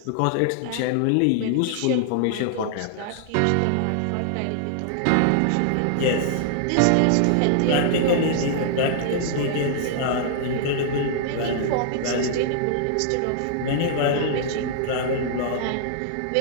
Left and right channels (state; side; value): different; both; correlation -0.01